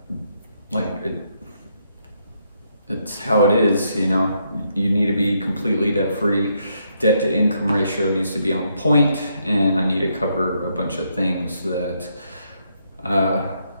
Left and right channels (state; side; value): inverted; both; correlation -0.76